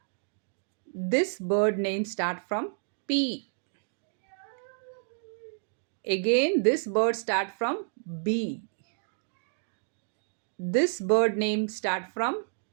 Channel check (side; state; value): left; silent; digital silence